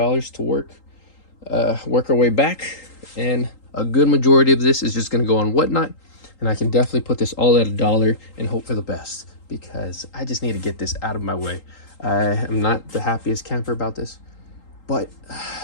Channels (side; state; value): right; late; 3.8 ms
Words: work our way back, and a good majority of this is just going to go on Whatnot, and I can definitely put this all at $1 and hope for the best, because I just need to get this out of my way. I am not the happiest camper about this, but